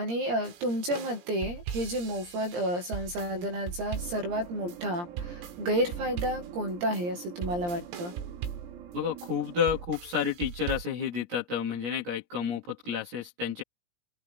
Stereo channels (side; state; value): left; late; 17 ms